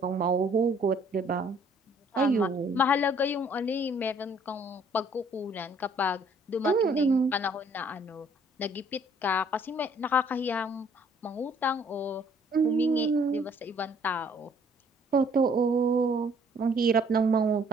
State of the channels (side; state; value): both; normal; correlation 0.60